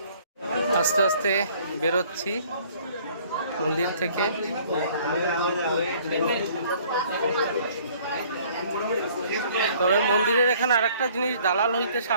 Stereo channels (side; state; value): both; inverted; correlation -0.57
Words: আস্তে আস্তে বেরোচ্ছি মন্দির থেকে। তবে মন্দিরের এখানে আরেকটা জিনিস, দালাল হইতে